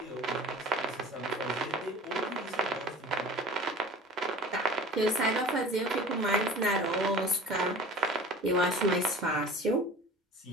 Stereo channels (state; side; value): normal; both; correlation 0.41